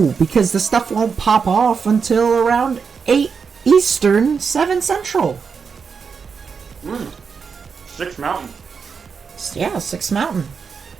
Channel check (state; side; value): quieter; left; 5.8 dB